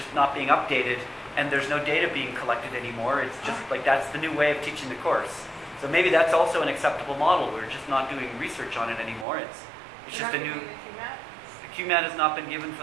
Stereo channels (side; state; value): left; drops out; at 9.2 s